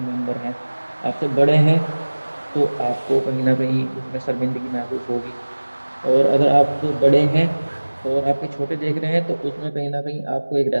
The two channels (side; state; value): both; inverted; correlation -1.00